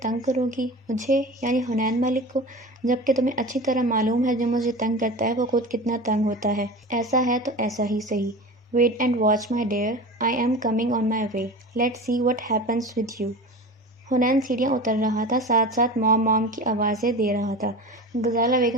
تنگ کرو گی، مجھے یعنی حنین ملک کو، جبکہ تمہیں اچھی طرح معلوم ہے جو مجھے تنگ کرتا ہے وہ خود کتنا تنگ ہوتا ہے۔ ایسا ہے تو ایسا ہی صحیح۔ Wait and watch my dear, I am coming on my way, let's see what happens with you. Hunain سیڑھیاں اتر رہا تھا، ساتھ ساتھ مام مام کی آوازیں دے رہا تھا۔ غزالہ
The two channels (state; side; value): normal; both; correlation 0.32